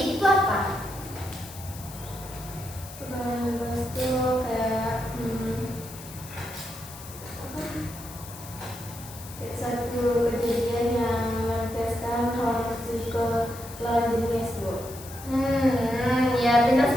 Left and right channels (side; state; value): left; noise; hiss, 15 dB below the sound